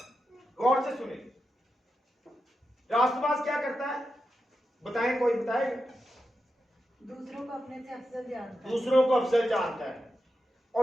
गौर से सुने, रास्तबाज क्या करता है? बताएं, कोई बताएगा? दूसरों को अपने से अफजल जानता है, दूसरों को अफजल जानता है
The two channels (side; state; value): both; normal; correlation 0.89